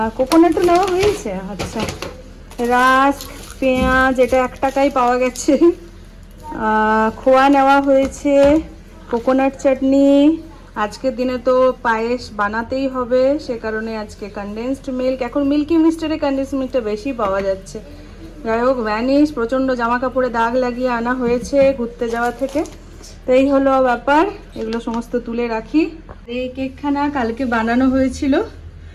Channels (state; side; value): identical; both; correlation 1.00